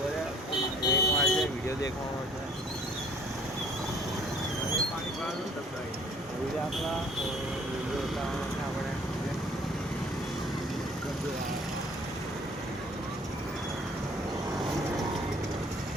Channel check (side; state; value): both; normal; correlation 0.56